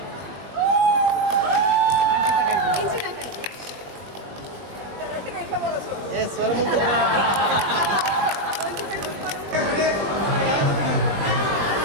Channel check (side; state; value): left; late; 20 ms